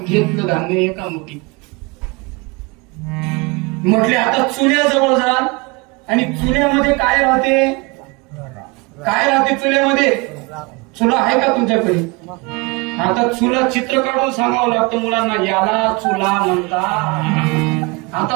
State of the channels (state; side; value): quieter; left; 27.1 dB